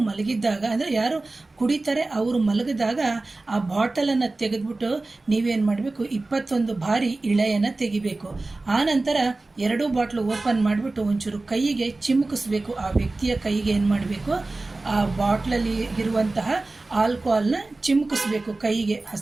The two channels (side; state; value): left; quieter; 3.2 dB